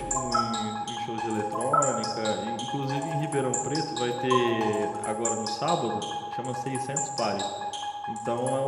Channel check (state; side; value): identical; both; correlation 1.00